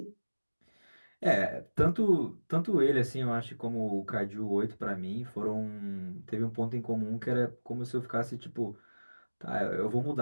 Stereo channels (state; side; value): inverted; both; correlation -1.00